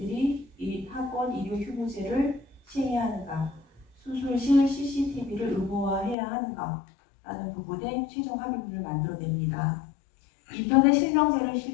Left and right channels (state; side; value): drops out; right; at 6.2 s